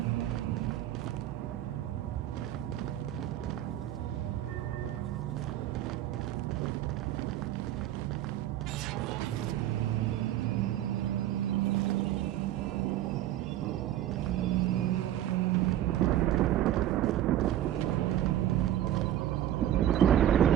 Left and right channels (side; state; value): left; quieter; 12.4 dB